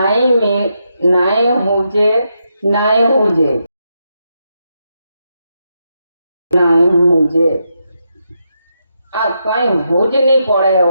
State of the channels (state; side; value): inverted; both; correlation -0.83